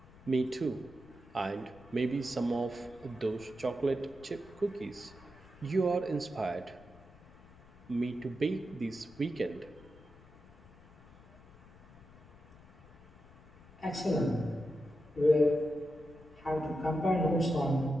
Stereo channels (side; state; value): left; noise; rumble, 23 dB below the sound